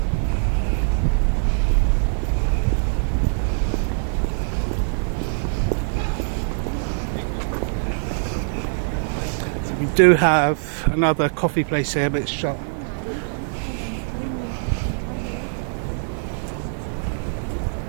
So we do have another coffee place here, but it's shut.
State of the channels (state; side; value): silent; left; 64 dB below the other